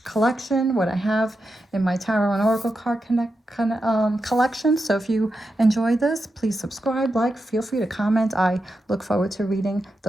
collection, what I have in my tarot and oracle card collection. So if you enjoy this, please subscribe, like, feel free to comment. I look forward to reading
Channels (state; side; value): normal; both; correlation 0.88